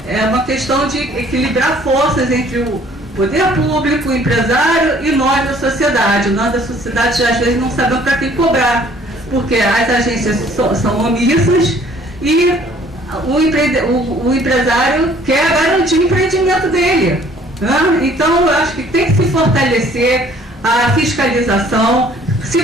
uma questão de equilibrar forças entre o poder público, o empresário e nós da sociedade. Nós da sociedade às vezes não sabemos para quem cobrar, porque as agências são omissas e o empresário quer garantir o empreendimento dele, né? Então eu acho que tem que se fortalecer a fiscalização. Se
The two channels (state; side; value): normal; both; correlation 0.57